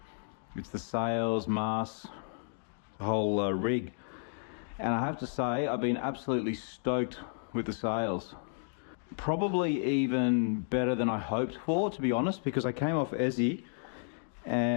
it's the sails, masts, the whole rig. And I have to say, I've been absolutely stoked with the sails. Probably even better than I hoped for, to be honest, because I came off Essie,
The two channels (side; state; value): right; silent; digital silence